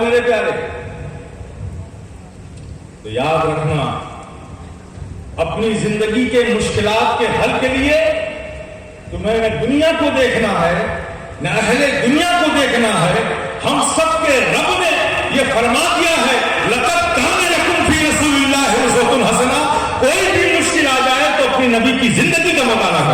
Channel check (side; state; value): both; identical; correlation 1.00